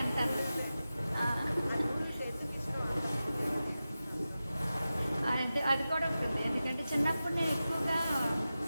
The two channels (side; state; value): both; inverted; correlation -0.94